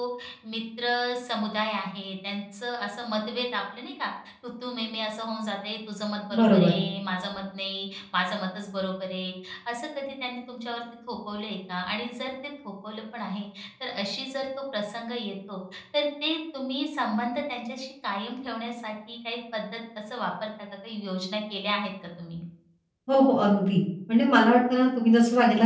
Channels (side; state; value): both; identical; correlation 1.00